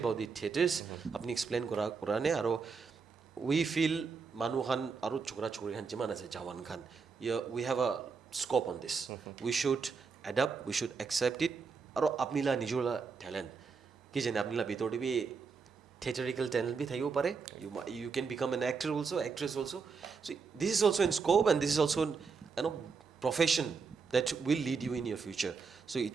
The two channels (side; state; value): left; quieter; 5.2 dB